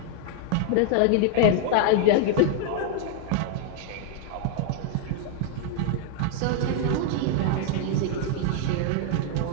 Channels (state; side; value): different; both; correlation 0.00